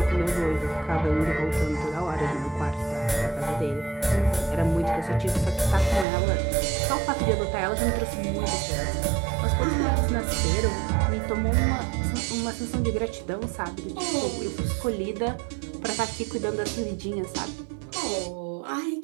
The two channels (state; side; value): drops out; left; at 6.1 s